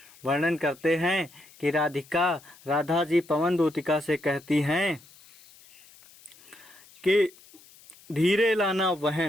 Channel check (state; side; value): noise; left; hiss, 25 dB below the sound